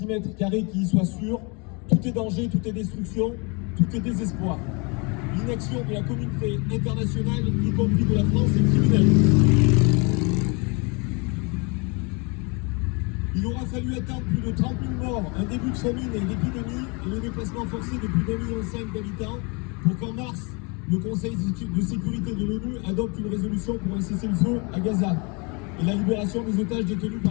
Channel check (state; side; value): quieter; right; 31.1 dB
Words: carré qui y soit sûr. Tout est danger, tout est destruction, tout est désespoir. L'inaction de la communauté internationale, y compris de la France, est criminelle. Il aura fallu attendre plus de 30 000 morts, un début de famine et l'épidémie et le déplacement forcé de plus d'1,5 million d'habitants pour qu'en mars, le Conseil de sécurité de l'ONU adopte une résolution pour un cessez-le-feu à Gaza et la libération des otages détenus